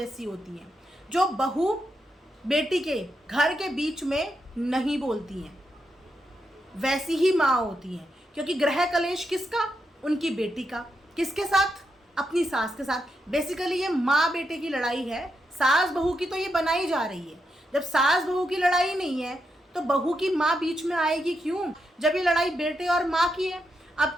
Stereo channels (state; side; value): normal; both; correlation 0.84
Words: होती है, जो बहू बेटी के घर के बीच में नहीं बोलती हैं, वैसी ही माँ होती हैं। क्योंकि ग्रह कलेश किसका, उनकी बेटी का, किसके साथ, अपनी सास के साथ। बेसिकली ये माँ बेटे की लड़ाई है, सास बहू की तो ये बनाई जा रही है। जब सास बहू की लड़ाई नहीं है तो बहू की माँ बीच में आएगी क्यों, जब ये लड़ाई बेटे और माँ की है।